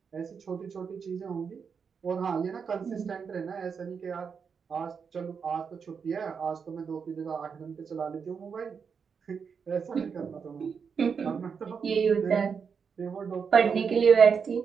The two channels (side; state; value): left; quieter; 6.2 dB